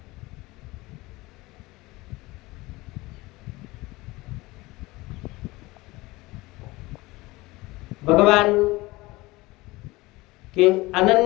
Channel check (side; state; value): right; quieter; 21.0 dB